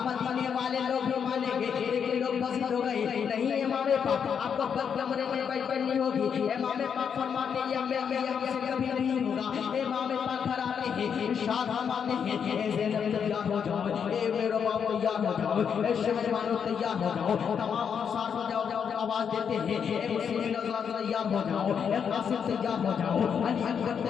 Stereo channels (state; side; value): quieter; right; 7.2 dB